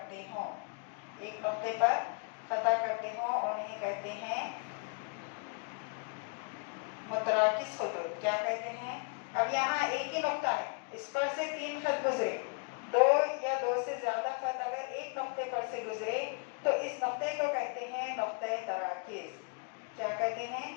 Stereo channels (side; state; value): right; quieter; 37.7 dB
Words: ہوں انہیں کہتے ہیں متراکز خطوط. کیا کہتے ہیں؟ اب یہاں ایک ہی نقطہ ہے، اس پر سے تین خط گزرے. دو یا دو سے زیادہ خط اگر ایک نقطے پر سے گزرے تو اس نقطے کو کہتے ہیں نقطۂ تراکز. کیا کہتے ہیں؟